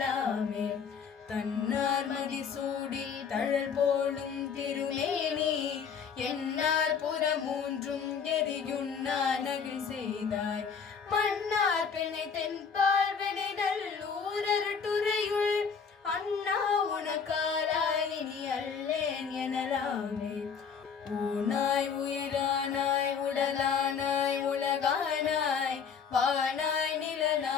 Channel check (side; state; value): right; quieter; 6.4 dB